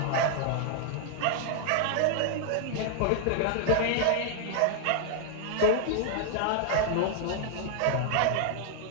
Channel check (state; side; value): different; both; correlation 0.00